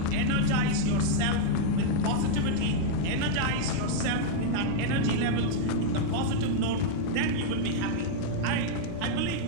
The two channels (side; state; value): both; different; correlation -0.01